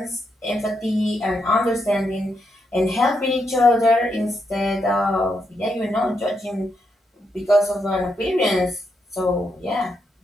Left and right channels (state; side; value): normal; both; correlation 0.81